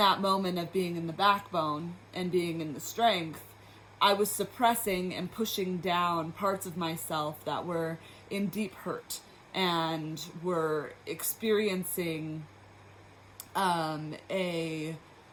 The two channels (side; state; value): both; identical; correlation 1.00